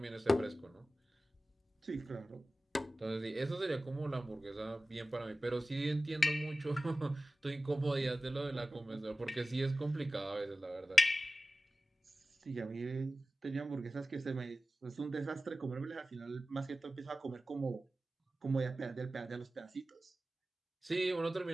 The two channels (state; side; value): normal; both; correlation 0.95